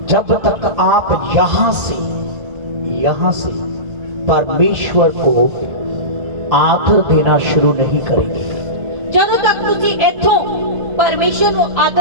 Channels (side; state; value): left; late; 1.4 ms